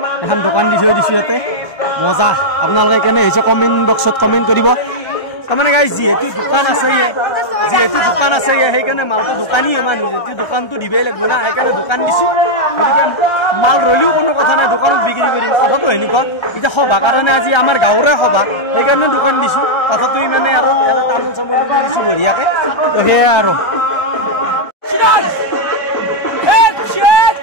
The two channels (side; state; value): right; late; 1.3 ms